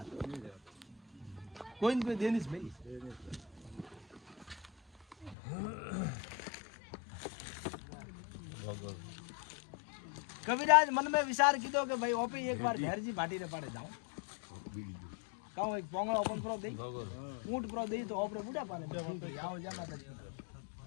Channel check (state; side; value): drops out; right; at 5.4 s